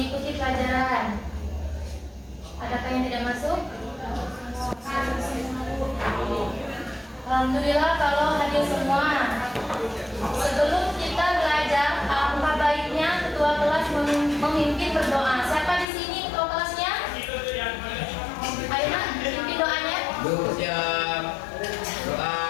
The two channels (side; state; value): right; drops out; at 15.9 s